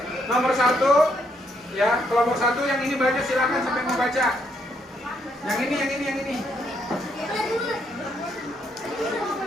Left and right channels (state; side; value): normal; both; correlation 0.74